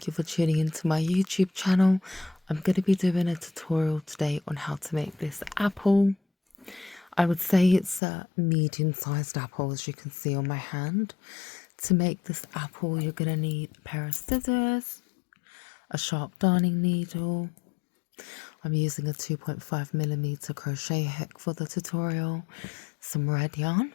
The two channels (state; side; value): drops out; right; at 8.0 s